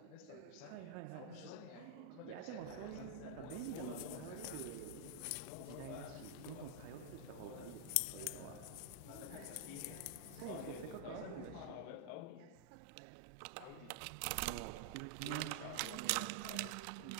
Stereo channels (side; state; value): both; different; correlation 0.00